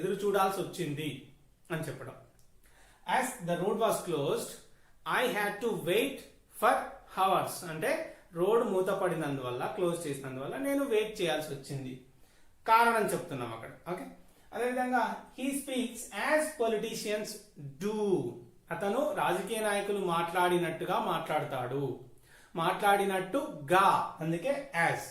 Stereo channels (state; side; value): identical; both; correlation 1.00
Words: చూడాల్సి వచ్చింది అని చెప్పడం. As the road was closed I had to wait for hours అంటే రోడ్ మూతపడినందువల్ల, క్లోజ్ చేసినందువల్ల నేను వెయిట్ చేయాల్సి వచ్చింది, కారణం చెప్తున్నాం అక్కడ. ఓకే, అదేవిధంగా he speaks as politicians do. అతను రాజకీయ నాయకులు మాట్లాడినట్టుగా మాట్లాడతాడు, మాట్లాడినట్టుగా, అందుకే యాజ్.